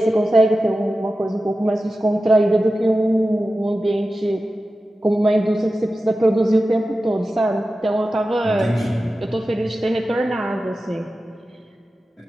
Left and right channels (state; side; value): normal; both; correlation 0.94